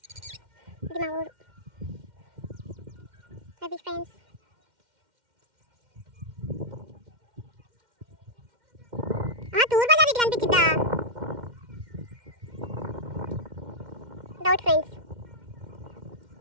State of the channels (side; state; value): left; late; 2.1 ms